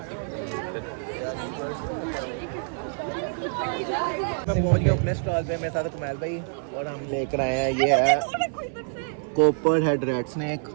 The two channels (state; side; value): silent; left; digital silence